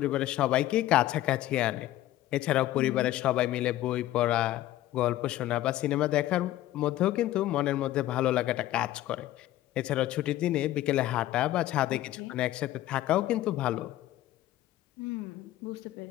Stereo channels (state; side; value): quieter; right; 14.6 dB